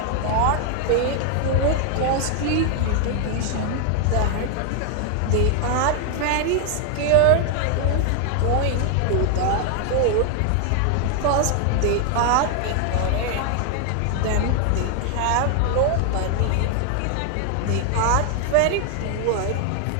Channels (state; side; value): different; both; correlation 0.00